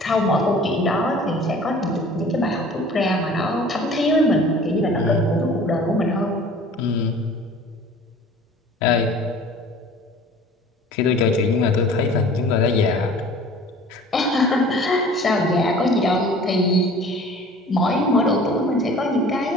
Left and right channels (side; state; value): both; normal; correlation 0.46